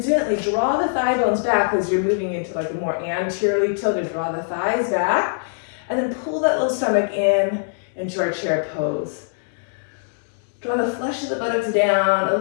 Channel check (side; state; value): right; silent; digital silence